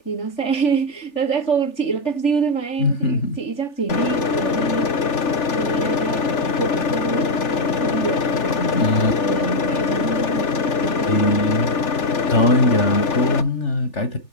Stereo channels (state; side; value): late; right; 3.4 ms